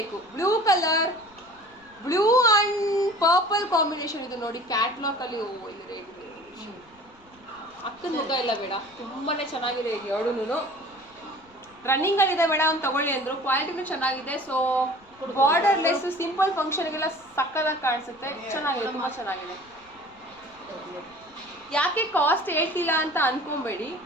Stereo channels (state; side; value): noise; left; rumble, 29 dB below the sound